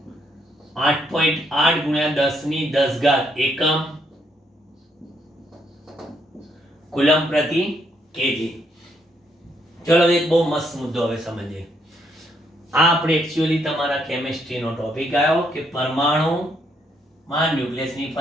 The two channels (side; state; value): both; normal; correlation 0.74